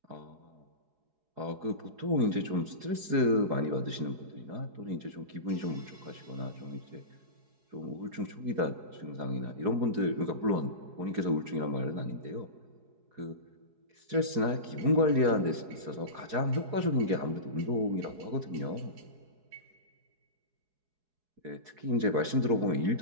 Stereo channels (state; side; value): late; left; 4.7 ms